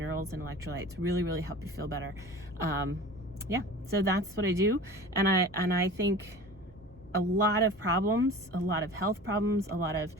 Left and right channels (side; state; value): both; normal; correlation 0.38